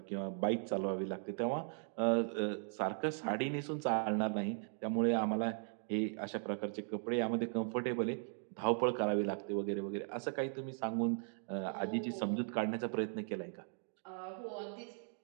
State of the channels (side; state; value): left; silent; 52 dB below the other